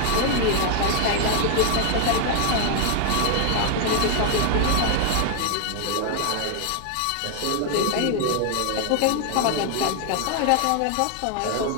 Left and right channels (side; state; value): both; different; correlation 0.01